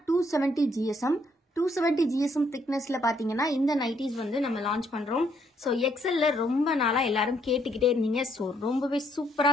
270 GSM 270 GSM திக்னஸ்ல பாத்தீங்கன்னா இந்த நைட்டிஸ் வந்து நம்ம லான்ச் பண்றோம். ஸோ எக்ஸல்ல ரொம்ப நாளா எல்லாரும் கேட்டுக்கிட்டே இருந்தீங்க. ஸோ ரொம்பவே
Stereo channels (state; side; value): normal; both; correlation 0.71